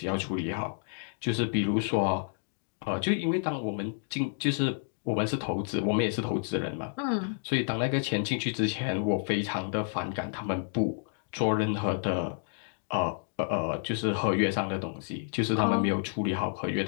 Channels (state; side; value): silent; right; digital silence